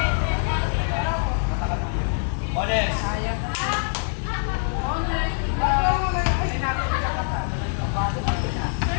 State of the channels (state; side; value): silent; right; digital silence